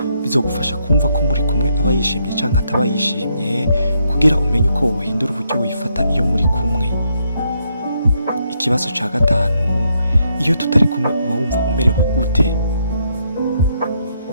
bizogufasha kumva ko muri kumwe aba yishimye canke ataba yishimye, kugira umenye uko wohindura uburyo wifata iyo muri kumwe. Ikibazo ca 5, iyo tutari kumwe uba wumva umerewe gute?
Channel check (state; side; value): inverted; both; correlation -0.76